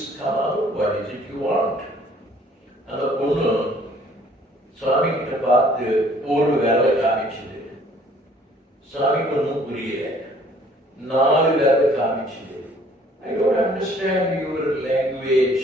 come out. What is it you want? அந்த பொண்ணு சுவாமி கிட்ட பார்த்து ஒரு வேலை காமிச்சது. சுவாமிக்கு ஒன்றும் புரியல. 4 வேலை காமிச்சது. I don't understand your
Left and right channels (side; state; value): both; normal; correlation 0.58